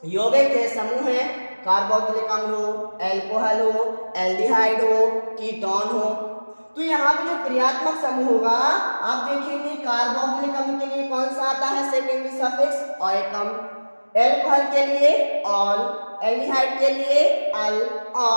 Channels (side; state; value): both; inverted; correlation -1.00